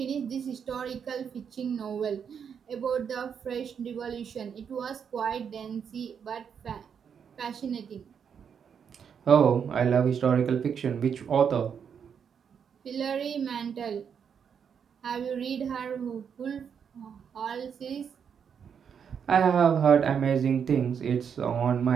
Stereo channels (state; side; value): quieter; left; 7.3 dB